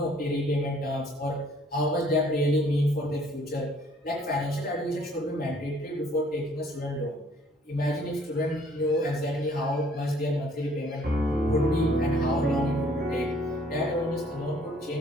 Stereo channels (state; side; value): normal; both; correlation 0.60